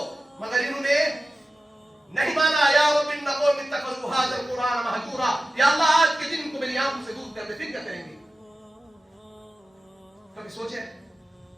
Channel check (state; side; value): normal; both; correlation 0.93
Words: मगर इन्होंने नहीं माना। या रब्बिन नक़ूल इत्तखज़ू हाज़ल कुरान महजूरा। या अल्लाह आज के दिन को मेरी आंखों से दूर कर दे, फिर क्या करेंगे? कभी सोचे?